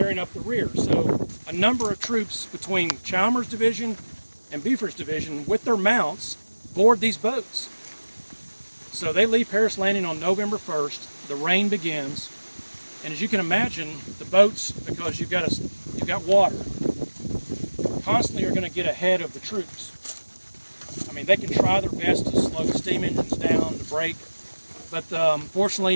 up the rear. So a number of troops between Chalmers' division and Buford's division with their mounts board these boats. So they leave Paris Landing on November 1st. The rain begins, and as you can imagine, the boats, because you've got water, constantly are going to get ahead of the troops. I mean, they can try their best to slow the steam engines down, to brake, but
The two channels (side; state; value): both; inverted; correlation -1.00